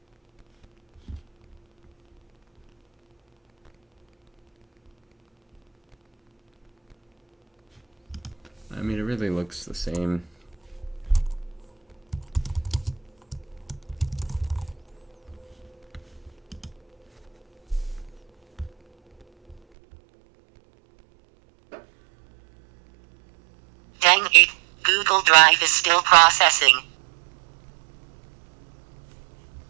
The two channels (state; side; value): drops out; left; at 19.6 s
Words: I mean, it really looks the same. Dang it, Google Drive is still processing.